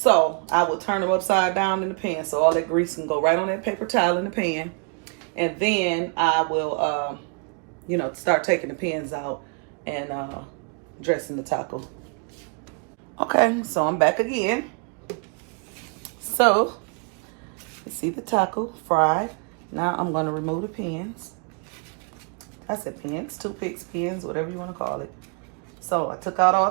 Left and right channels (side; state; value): left; quieter; 37.5 dB